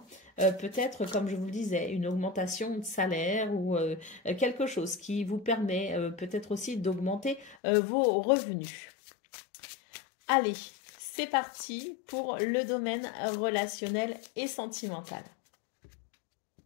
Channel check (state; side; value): drops out; right; at 7.6 s